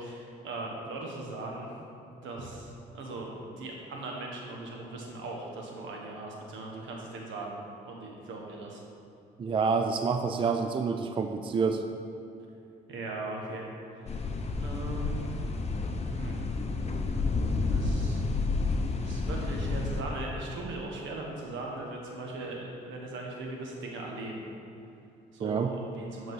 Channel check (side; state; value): both; normal; correlation 0.57